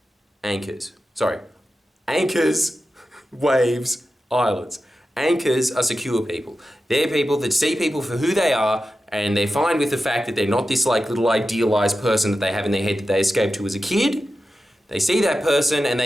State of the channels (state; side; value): normal; both; correlation 0.92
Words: anchors. Sorry. Anchors, waves, islands. Anchors are secure people. They're people that see people for who they are, and they're fine with the fact that they're not this like little idealized person that they have in their head that they escaped to as a kid. They see that person and